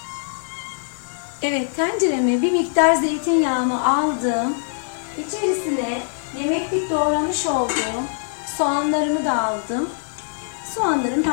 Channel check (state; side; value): silent; right; digital silence